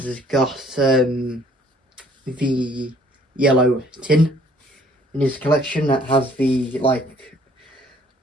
has got the yellow tin in his collection that has the, like,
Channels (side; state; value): both; normal; correlation 0.59